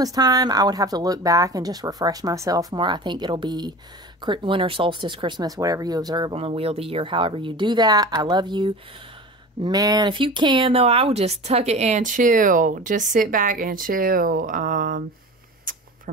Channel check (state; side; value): normal; both; correlation 0.34